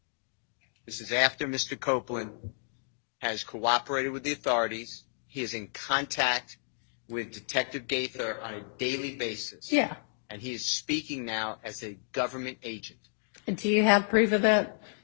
This is after Mr. Copeland has cooperated with the authorities. He is in contact with Detective Gaither on a daily basis. Yeah. And he is speaking now as a government agent. Do you have proof of that?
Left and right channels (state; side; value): silent; right; digital silence